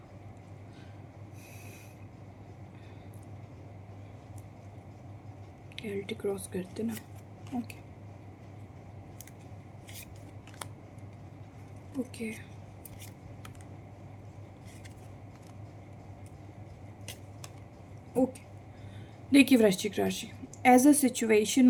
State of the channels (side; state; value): both; identical; correlation 1.00